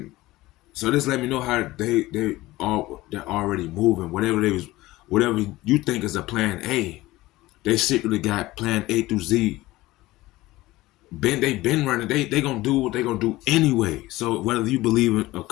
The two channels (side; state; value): right; quieter; 18.3 dB